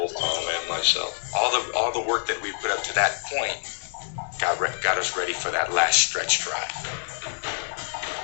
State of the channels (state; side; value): silent; right; 61 dB below the other